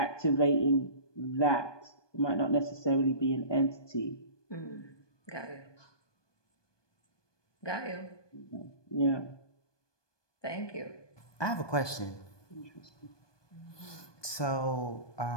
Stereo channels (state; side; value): late; right; 1.2 ms